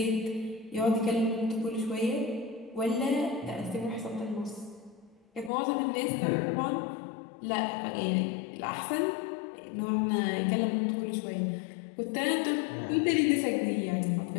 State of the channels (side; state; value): right; drops out; at 5.5 s